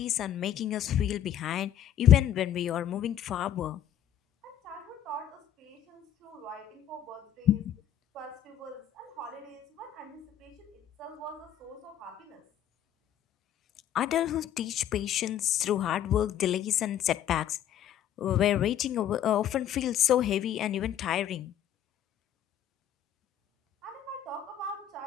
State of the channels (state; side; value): quieter; right; 10.4 dB